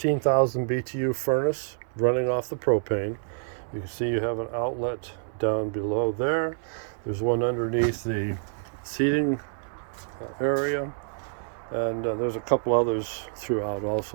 BTU furnace running off the propane. You can see you have an outlet down below there. There's one underneath the seating area. And there's a couple others throughout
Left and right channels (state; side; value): silent; left; 60 dB below the other